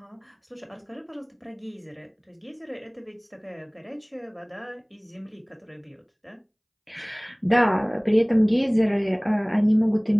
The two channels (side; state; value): both; identical; correlation 1.00